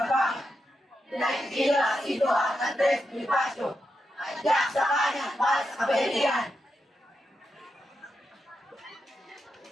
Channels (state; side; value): normal; both; correlation 0.86